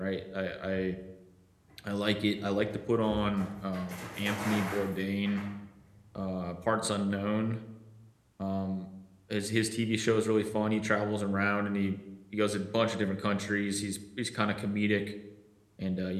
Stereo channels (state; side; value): identical; both; correlation 1.00